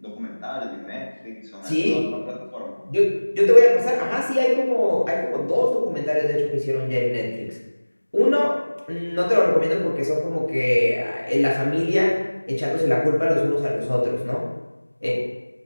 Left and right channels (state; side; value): inverted; both; correlation -1.00